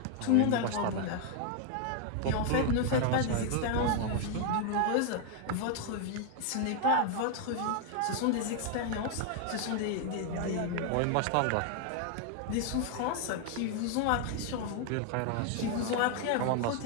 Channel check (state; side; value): different; both; correlation 0.00